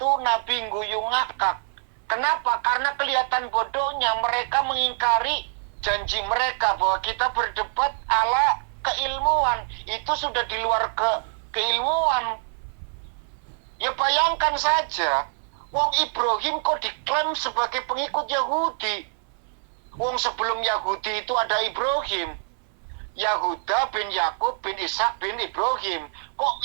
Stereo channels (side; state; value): left; silent; 59 dB below the other